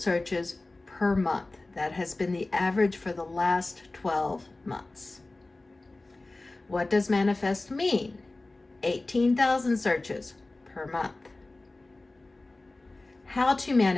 per month. That has been the average for the last 12 months. What does manifest mean? 18,000 searches per month. how to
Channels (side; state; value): right; quieter; 3.0 dB